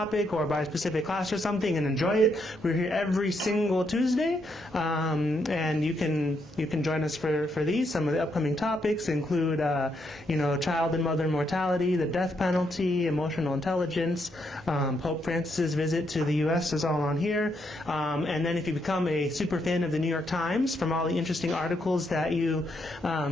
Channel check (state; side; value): normal; both; correlation 0.77